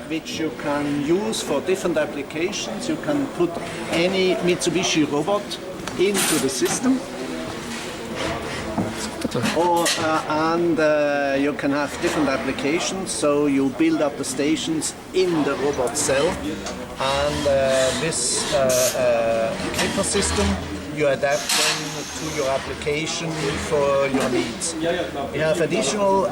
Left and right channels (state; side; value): identical; both; correlation 1.00